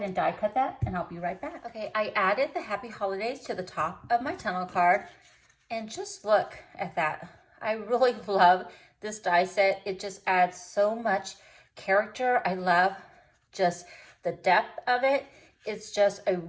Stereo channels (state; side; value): identical; both; correlation 1.00